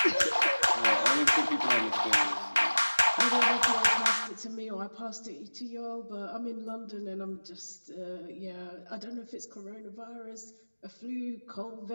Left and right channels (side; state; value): both; inverted; correlation -1.00